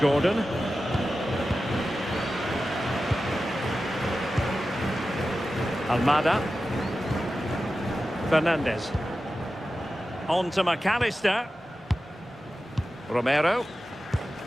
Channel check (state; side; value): normal; both; correlation 0.93